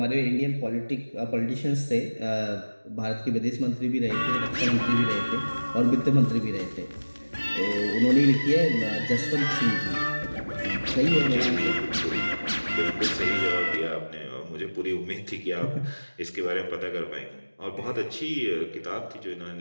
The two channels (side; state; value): both; inverted; correlation -1.00